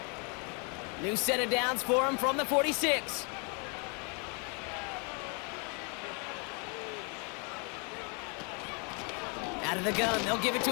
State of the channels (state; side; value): quieter; right; 35.2 dB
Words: New set of downs for him from the 46. Out of the gun, they'll give it